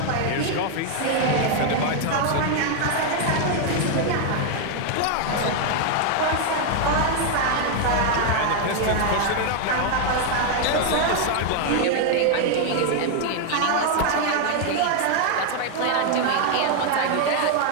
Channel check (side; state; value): both; different; correlation 0.00